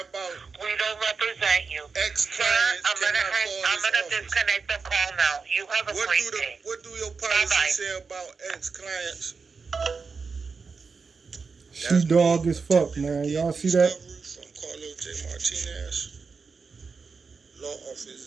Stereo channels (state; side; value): quieter; left; 4.9 dB